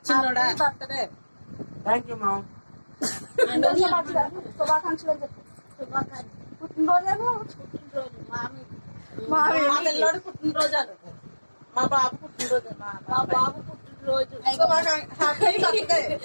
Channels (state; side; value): inverted; both; correlation -1.00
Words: చిన్నోడా బర్త్డే. Thank you mom. శుభాకాంక్షలు అని చెప్పు. పుట్టినరోజు మా పిల్లోడు పుట్టినరోజు అను. మా బాబు పుట్టినరోజు. మా బాబు పుట్టినరోజు. Happy birthday.